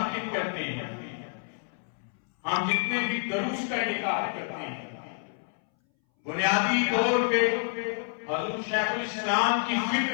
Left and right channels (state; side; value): silent; right; 59 dB below the other